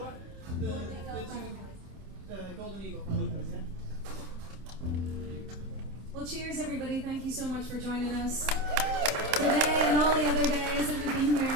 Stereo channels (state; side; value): late; left; 27 ms